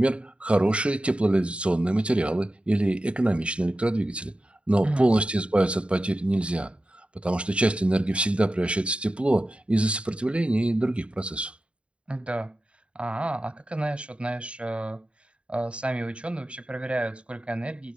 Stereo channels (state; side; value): late; left; 0.058 ms